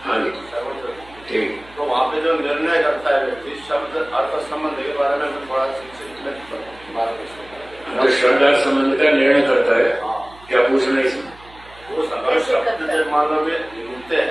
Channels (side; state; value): right; noise; hum, 24 dB below the sound